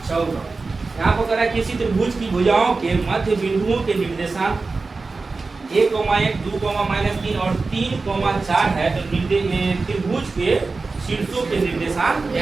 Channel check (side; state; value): left; quieter; 3.9 dB